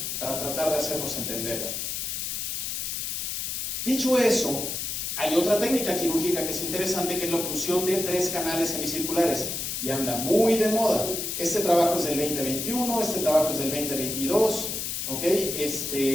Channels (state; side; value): noise; left; hiss, 3 dB below the sound